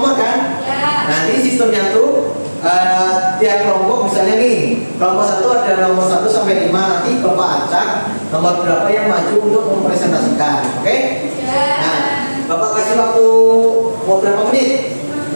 kan? Ya. Nanti sistemnya tuh tiap kelompok misalnya nih, kelompok 1 ada nomor 1 sampai 5, nanti Bapak acak nomor berapa yang maju untuk mempresentasikan. Oke? Ya. Nah, Bapak kasih waktu mau berapa menit?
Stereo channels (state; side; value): inverted; both; correlation -1.00